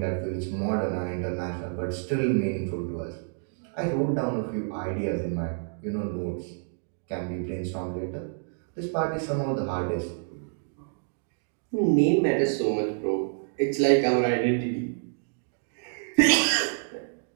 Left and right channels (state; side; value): silent; left; digital silence